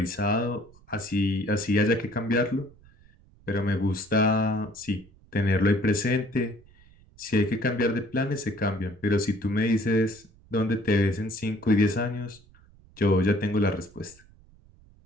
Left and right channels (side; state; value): right; noise; rumble, 27 dB below the sound